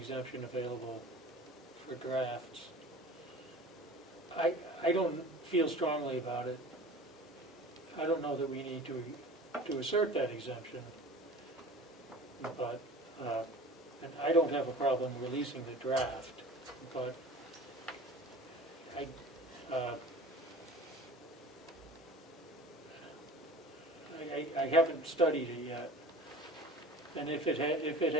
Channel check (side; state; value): both; normal; correlation 0.41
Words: available for drafts. I don't feel strongly about it. I don't know that we need to assert that exemption, but, and I don't have a problem releasing the draft, but I haven't studied it yet, and if it